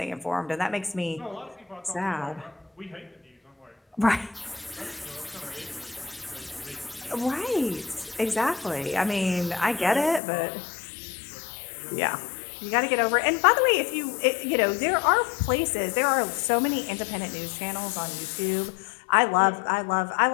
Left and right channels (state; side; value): drops out; right; at 10.2 s